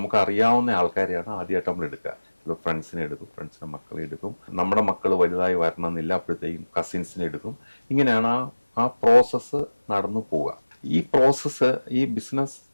അറിയാവുന്ന ആൾക്കാരെയാണ് ആദ്യമായിട്ട് നമ്മൾ എടുക്കുക. ചിലപ്പോൾ ഫ്രണ്ട്സിനെ എടുക്കും, ഫ്രണ്ട്സിൻ്റെ മക്കളെ എടുക്കും, നമ്മുടെ മക്കൾ വലുതായി വരണമെന്നില്ല, അപ്പോഴത്തേക്കും കസിൻസിനെ എടുക്കും. ഇങ്ങനെയാണ് ആ പ്രോസസ്സ് നടന്നു പോവുക. ഈ പ്രോസസ്സ് ഈ ബിസിനസ്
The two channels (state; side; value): inverted; both; correlation -1.00